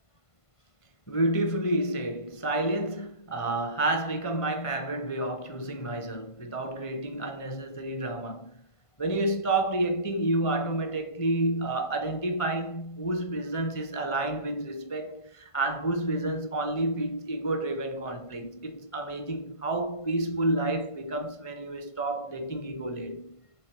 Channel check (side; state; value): right; late; 1.5 ms